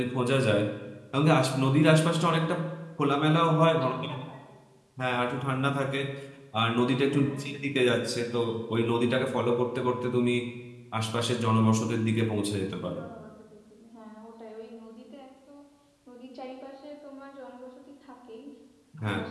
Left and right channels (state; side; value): identical; both; correlation 1.00